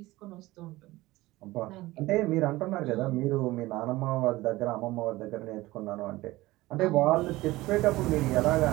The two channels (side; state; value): left; quieter; 18.7 dB